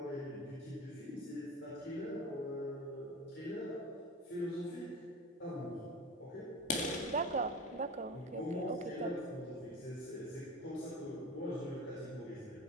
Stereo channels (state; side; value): normal; both; correlation 0.32